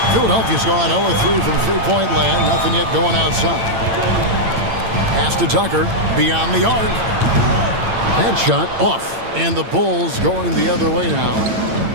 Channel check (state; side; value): late; left; 8.9 ms